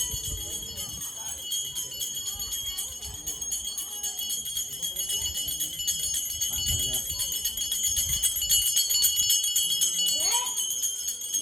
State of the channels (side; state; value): both; normal; correlation 0.81